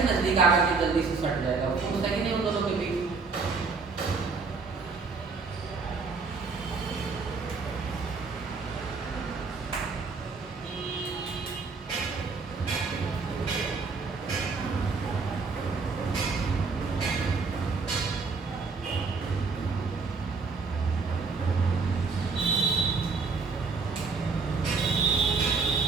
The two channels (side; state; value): left; quieter; 4.5 dB